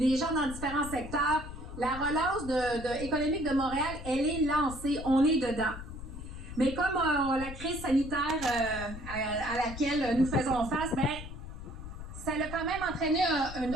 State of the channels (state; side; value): noise; left; rumble, 11 dB below the sound